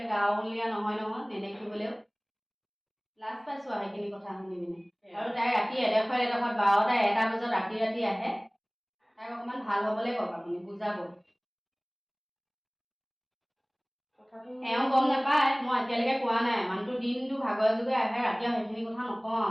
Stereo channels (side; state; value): both; identical; correlation 1.00